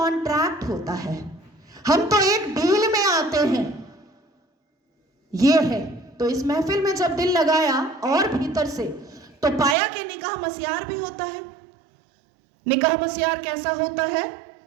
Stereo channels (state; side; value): drops out; left; at 9.8 s